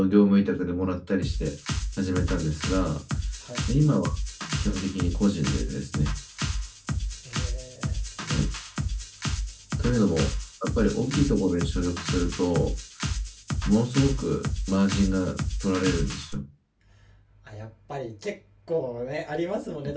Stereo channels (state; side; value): identical; both; correlation 1.00